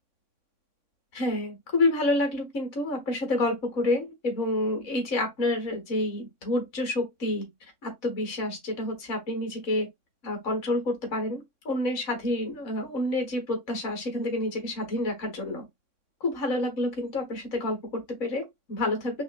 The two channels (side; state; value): right; late; 3.6 ms